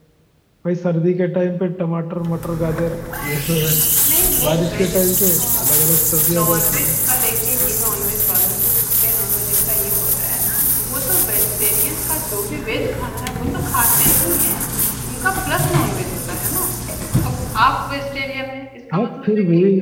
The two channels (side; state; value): both; identical; correlation 1.00